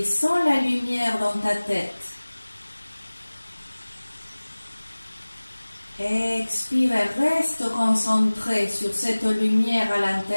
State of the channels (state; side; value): inverted; both; correlation -1.00